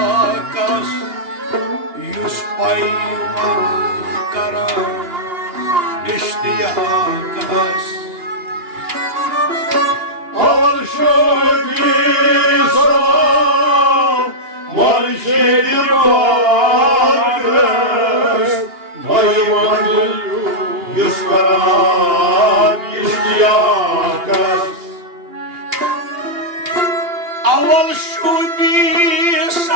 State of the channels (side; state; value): left; late; 2.8 ms